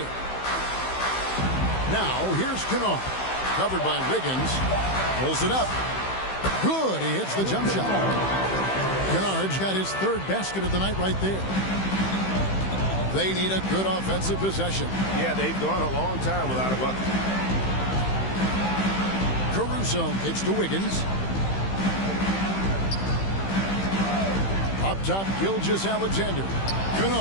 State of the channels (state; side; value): late; right; 15 ms